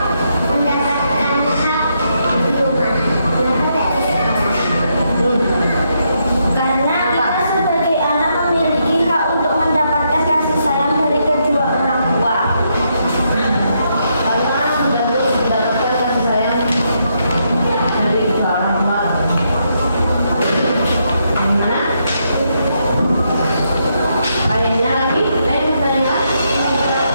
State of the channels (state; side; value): inverted; both; correlation -0.78